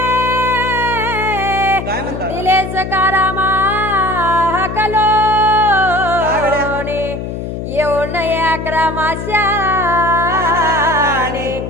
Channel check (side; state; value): left; noise; hum, 6 dB below the sound